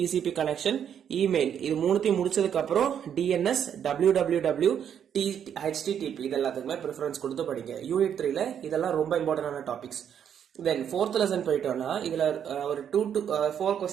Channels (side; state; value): left; quieter; 8.7 dB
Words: connection email இது மூணுத்தையும் முடிச்சதுக்கு அப்புறம் DNS www HTTP இது எல்லாத்துக்குமே ப்ரிஃபரன்ஸ் கொடுத்து படிங்க. யூனிட் 3ல இதெல்லாம் ரொம்ப இம்பார்ட்டன்டான டாபிக்ஸ். தென் ஃபோர்த் லெசன் போயிட்டோம்னா இதுல ஒரு 2 to 4